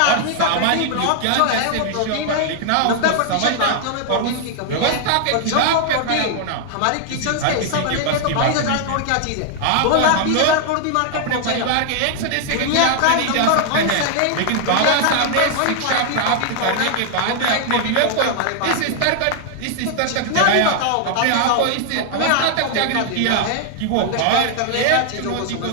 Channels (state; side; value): different; both; correlation 0.00